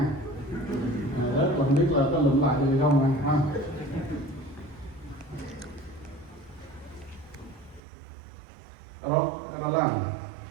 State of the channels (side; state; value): left; drops out; at 7.8 s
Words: Rớt là không biết là có lụm lại được không này ha. Rồi, ra làm.